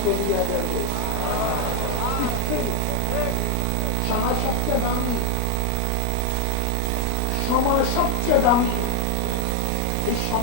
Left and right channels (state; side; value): different; both; correlation 0.01